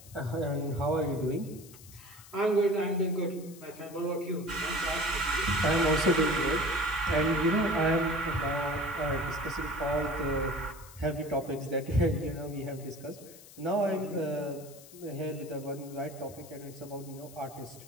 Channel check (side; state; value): left; noise; hiss, 19 dB below the sound